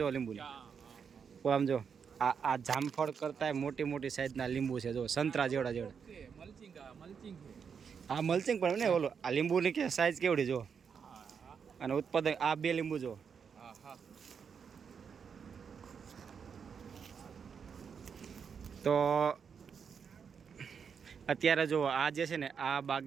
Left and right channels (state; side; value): quieter; left; 6.6 dB